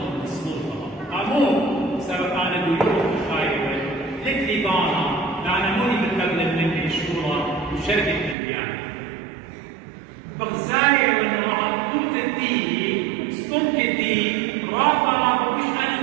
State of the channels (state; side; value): drops out; left; at 8.3 s